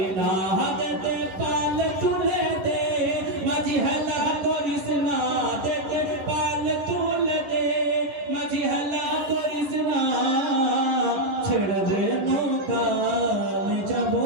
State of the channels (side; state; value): left; late; 11 ms